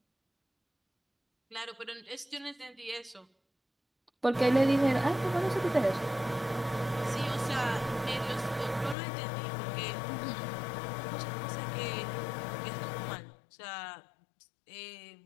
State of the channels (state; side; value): drops out; right; at 9.0 s